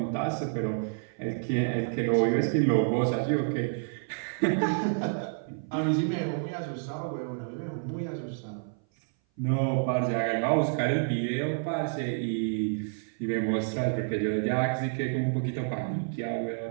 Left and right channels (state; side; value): silent; left; 57 dB below the other